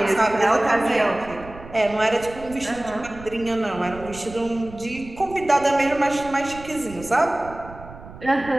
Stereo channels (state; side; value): noise; right; rumble, 16 dB below the sound